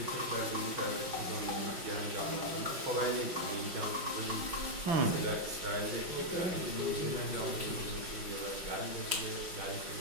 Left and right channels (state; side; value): late; left; 5.6 ms